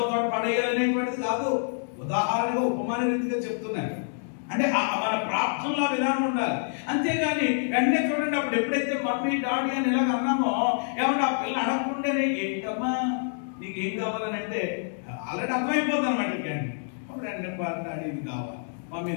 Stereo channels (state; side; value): silent; right; digital silence